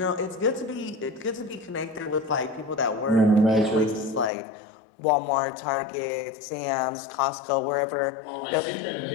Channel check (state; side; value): drops out; right; at 4.3 s